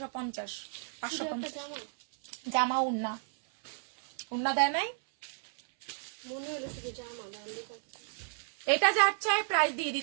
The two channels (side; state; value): left; silent; 56 dB below the other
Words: 550। জামা উন্না দেয় নাই, মনে হলো শুধু জামা। এটা যার চাই প্রাইস দিয়ে